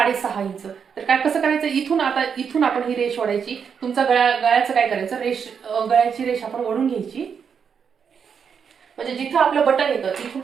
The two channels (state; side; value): quieter; left; 6.8 dB